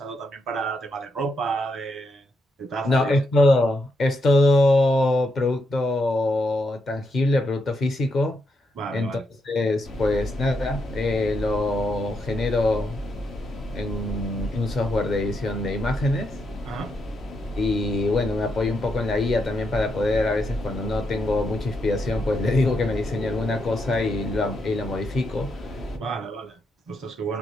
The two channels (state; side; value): normal; both; correlation 0.80